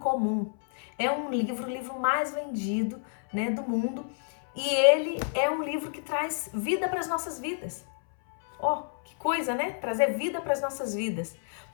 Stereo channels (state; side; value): silent; right; 58 dB below the other